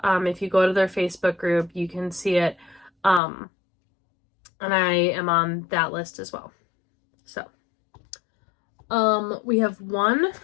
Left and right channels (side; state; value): right; drops out; at 3.2 s